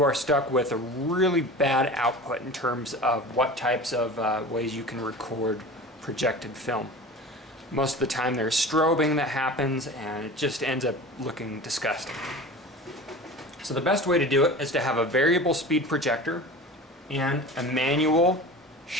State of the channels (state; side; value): normal; both; correlation 0.36